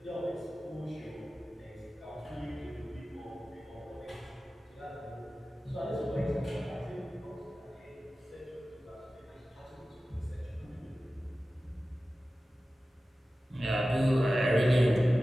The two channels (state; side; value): normal; both; correlation 0.95